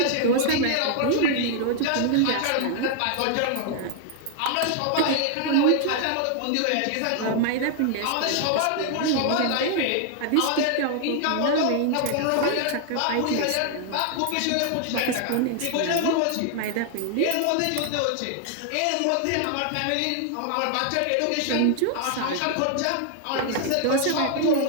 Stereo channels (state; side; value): different; both; correlation 0.00